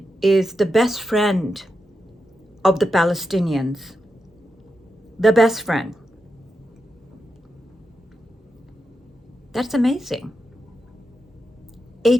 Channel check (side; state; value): both; normal; correlation 0.87